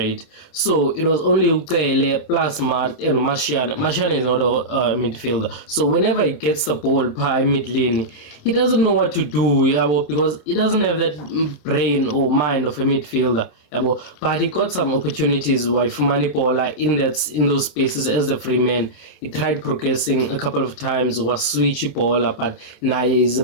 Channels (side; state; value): right; late; 27 ms